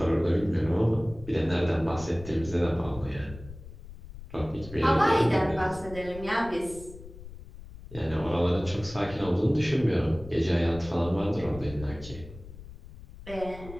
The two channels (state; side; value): noise; left; rumble, 15 dB below the sound